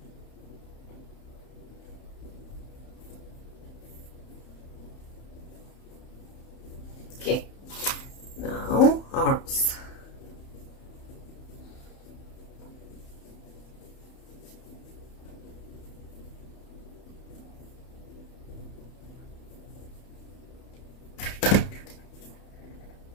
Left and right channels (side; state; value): right; late; 31 ms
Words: Okay, now arms.